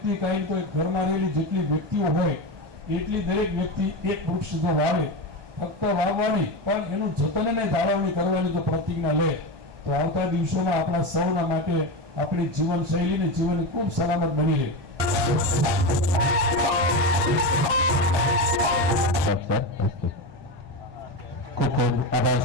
કાંઈ તો ઘરમાં રહેલી જેટલી વ્યક્તિઓ હોય એટલી દરેક વ્યક્તિ એક વૃક્ષ જો વાવે, ફક્ત વાવવાની પણ એનું જતન અને જાળવણી કરવાની જો પ્રતિજ્ઞા લે તો આવતા દિવસોમાં આપણા સૌના માટે આપણી જીવન શૈલીને જીવન ખૂબ સલામત બની રહે।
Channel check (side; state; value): left; late; 1.2 ms